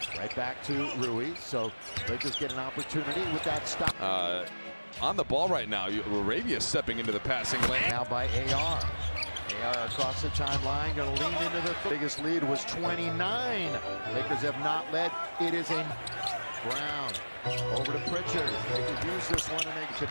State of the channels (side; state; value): both; inverted; correlation -1.00